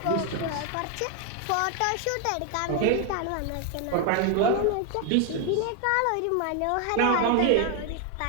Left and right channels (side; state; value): both; different; correlation 0.01